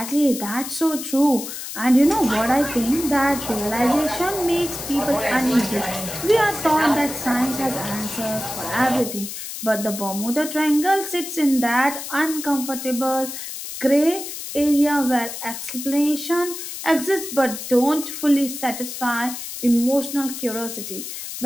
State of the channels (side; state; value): left; noise; hiss, 8 dB below the sound